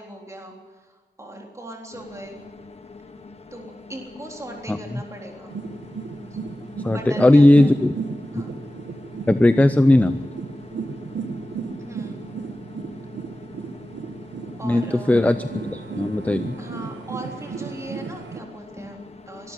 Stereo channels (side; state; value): both; normal; correlation 0.94